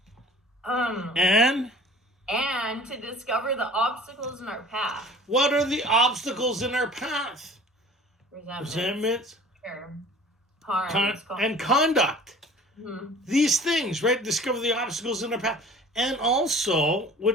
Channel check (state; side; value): normal; both; correlation 0.46